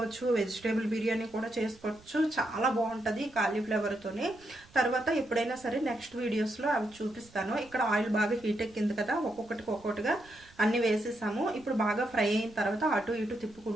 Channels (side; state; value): right; noise; rumble, 26 dB below the sound